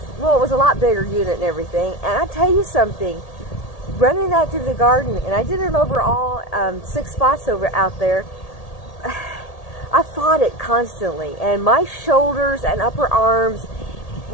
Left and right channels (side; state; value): right; late; 1.8 ms